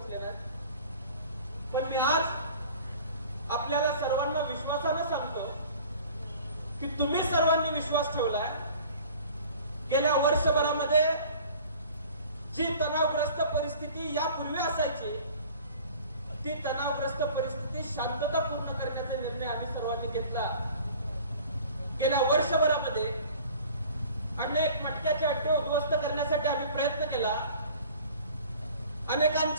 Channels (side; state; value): both; inverted; correlation -0.46